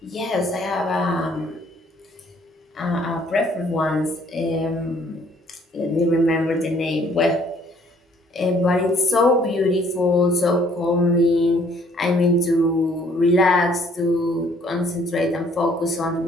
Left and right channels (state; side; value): normal; both; correlation 0.61